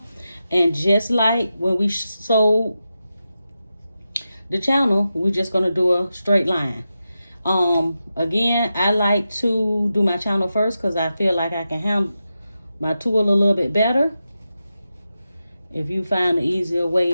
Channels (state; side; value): inverted; both; correlation -0.90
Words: and just like when we sewed the channel, we're just gonna do a straight line. Again, I like to do my channel first because I feel like I can handle my tool a little bit better. If you find an easier